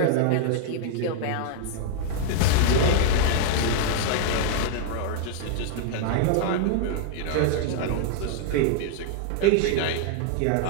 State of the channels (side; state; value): both; different; correlation -0.01